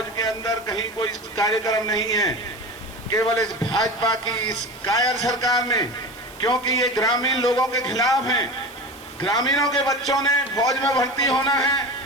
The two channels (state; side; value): noise; right; hiss, 22 dB below the sound